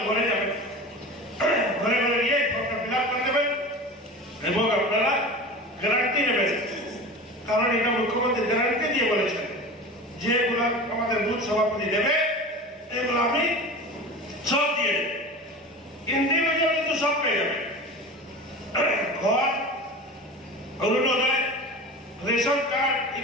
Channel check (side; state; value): both; normal; correlation 0.32